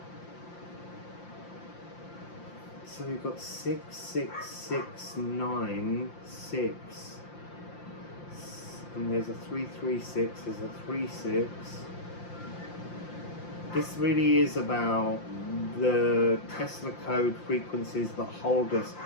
So we've got 6, 6, 6, 9, 6. And there's a 3, 3, 6, there's a 3, 6. This really is about the Tesla code frequencies that hold us,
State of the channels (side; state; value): right; late; 5.8 ms